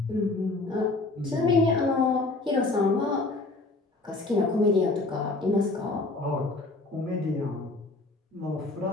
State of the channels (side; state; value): right; quieter; 3.2 dB